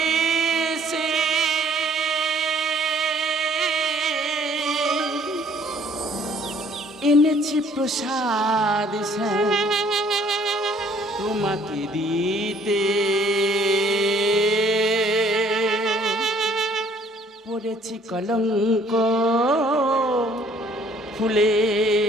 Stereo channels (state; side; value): normal; both; correlation 0.60